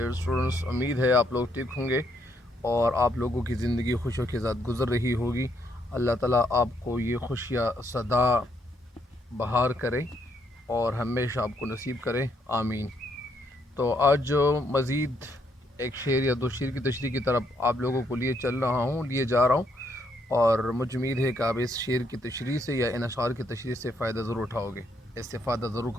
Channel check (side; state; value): both; normal; correlation 0.73